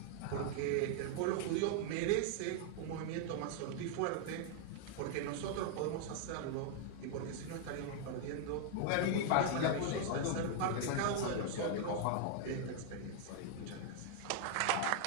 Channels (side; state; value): both; different; correlation 0.00